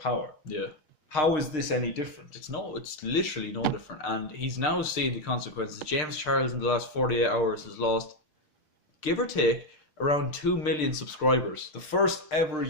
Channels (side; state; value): right; late; 6.6 ms